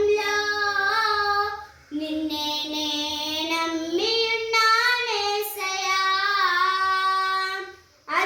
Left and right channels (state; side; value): identical; both; correlation 1.00